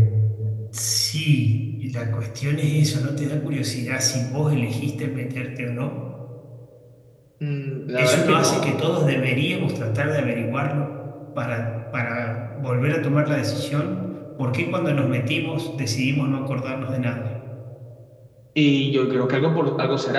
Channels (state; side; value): identical; both; correlation 1.00